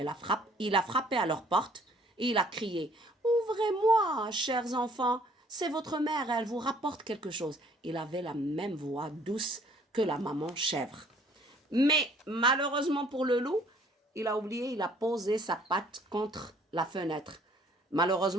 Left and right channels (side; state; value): both; normal; correlation 0.59